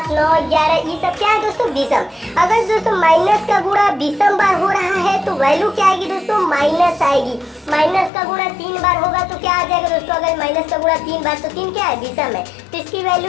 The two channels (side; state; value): right; drops out; at 8.1 s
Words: 9, 11 ये सब क्या है दोस्तों, विषम। अगर दोस्तों माइनस का गुणा विषम बार हो रहा है तो वैल्यू क्या आएगी दोस्तों, माइनस आएगी। माइनस का गुणा 3 बार होगा तो क्या आ जाएगा दोस्तों, अगर माइनस का गुणा 3 बार, तो 3 क्या है, विषम है, तो इसकी